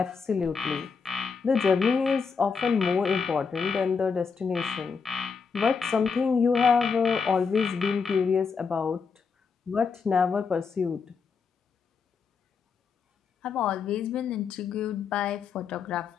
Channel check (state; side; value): quieter; right; 5.5 dB